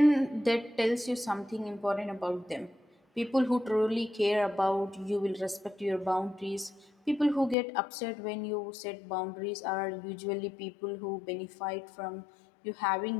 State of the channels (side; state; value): right; drops out; at 7.6 s